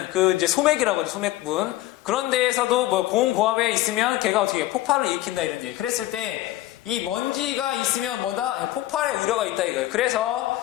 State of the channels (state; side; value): quieter; right; 16.0 dB